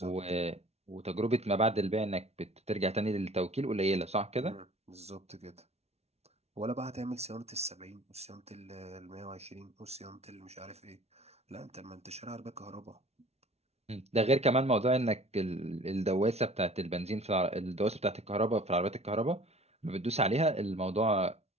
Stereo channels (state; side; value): late; left; 0.31 ms